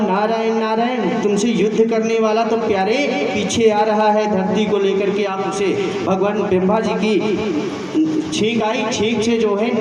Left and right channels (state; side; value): identical; both; correlation 1.00